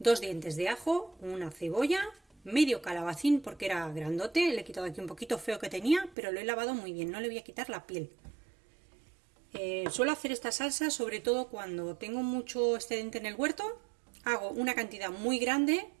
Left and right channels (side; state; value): left; drops out; at 6.2 s